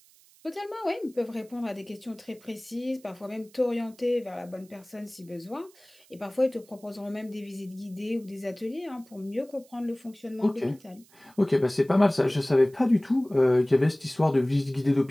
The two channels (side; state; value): right; noise; hiss, 28 dB below the sound